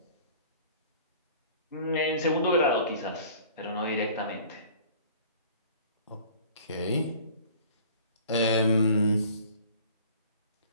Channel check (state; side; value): inverted; both; correlation -0.48